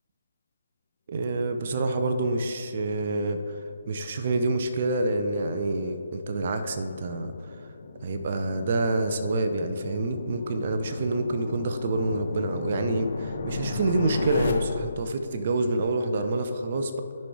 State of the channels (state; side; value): inverted; both; correlation -0.76